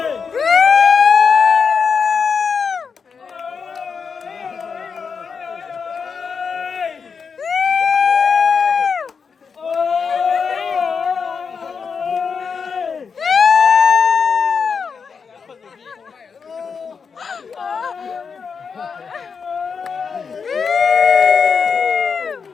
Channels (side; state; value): right; quieter; 5.8 dB